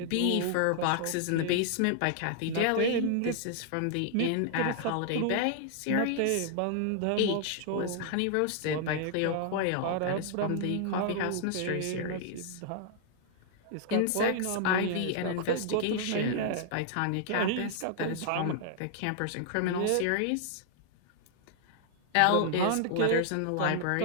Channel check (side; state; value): both; different; correlation -0.01